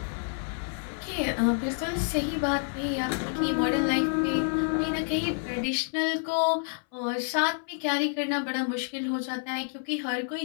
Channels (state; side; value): silent; right; 59 dB below the other